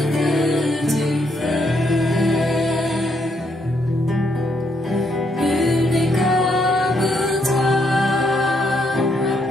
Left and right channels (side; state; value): both; normal; correlation 0.75